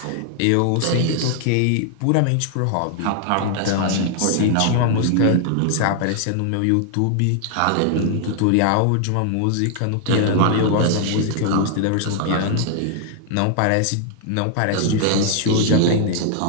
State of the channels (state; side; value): different; both; correlation 0.00